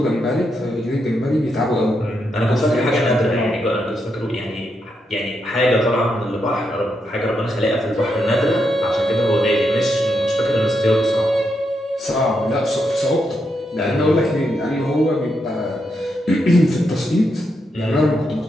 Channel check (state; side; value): normal; both; correlation 0.82